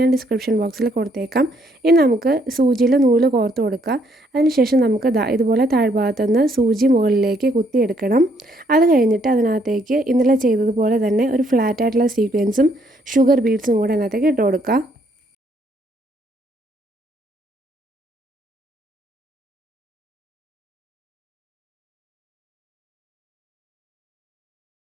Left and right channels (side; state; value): both; normal; correlation 0.69